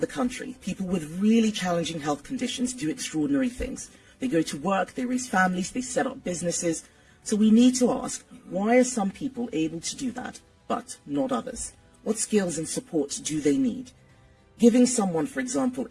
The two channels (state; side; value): identical; both; correlation 1.00